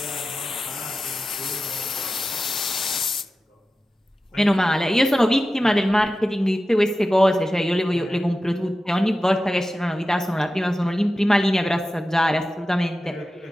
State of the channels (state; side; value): normal; both; correlation 0.94